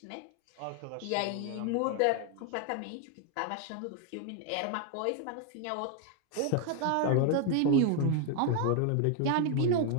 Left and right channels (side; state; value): both; different; correlation 0.01